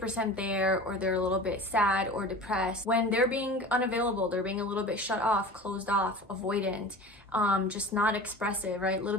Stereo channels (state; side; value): normal; both; correlation 0.36